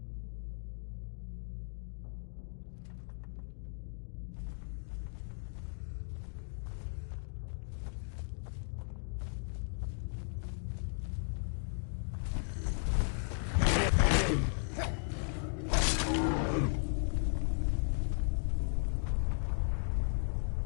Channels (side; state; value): right; silent; digital silence